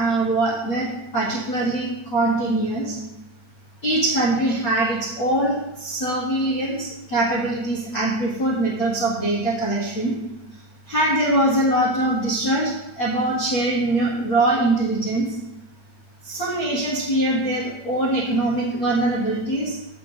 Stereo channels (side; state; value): right; late; 8.8 ms